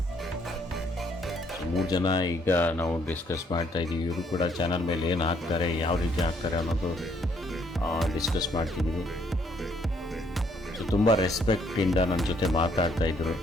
3 ಜನ ಈಗ ನಾವು ಡಿಸ್ಕಸ್ ಮಾಡ್ತಾ ಇದ್ದೀವಿ. ಇವರು ಕೂಡ ಚಾನಲ್ ಮೇಲೆ ಏನು ಹಾಕ್ತಾರೆ, ಯಾವ ರೀತಿ ಹಾಕ್ತಾರೆ ಅನ್ನೋದು ಡಿಸ್ಕಸ್ ಮಾಡ್ತಿದ್ದೀವಿ. ಸೊ ತುಂಬ ರೆಸ್ಪೆಕ್ಟಿಂದ ನನ್ನ ಜೊತೆ ಮಾತಾಡ್ತಾಯಿದ್ರು.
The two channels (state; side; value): normal; both; correlation 0.68